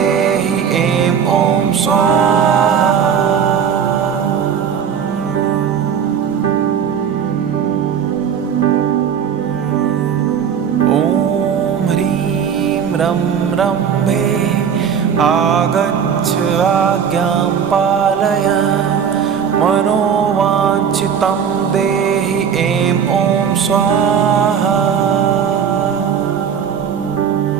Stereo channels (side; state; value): left; quieter; 7.6 dB